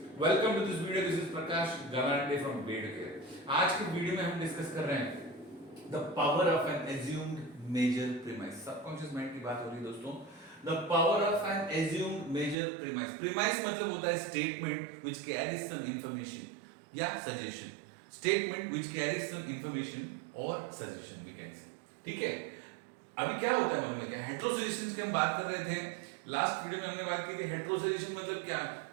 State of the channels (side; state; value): left; drops out; at 12.6 s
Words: welcome to this video. This is Prakash Galande from bed care. आज के video में हम डिस्कस कर रहे हैं the power of an assumed major premise. Subconscious mind की बात हो रही है दोस्तों। The power of an assumed major premise. Premise मतलब होता है statement which carries some information या suggestion. Statement which carries some information और सजेशन वी कैन से। ठीक है, अभी क्या होता है मालूम है क्या? हेटेरोसजेशंस की हम बात कर रहे थे। लास्ट वीडियो में हमने बात की थी हेटेरोसजेशन मतलब क्या,